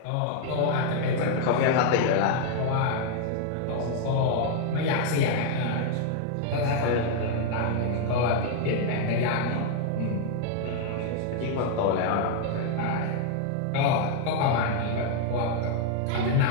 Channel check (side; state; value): both; different; correlation 0.00